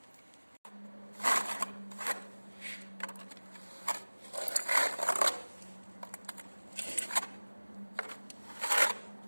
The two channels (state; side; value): inverted; both; correlation -1.00